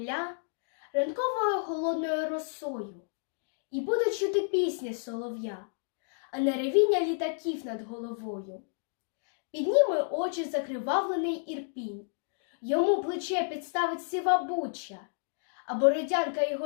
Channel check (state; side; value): silent; right; digital silence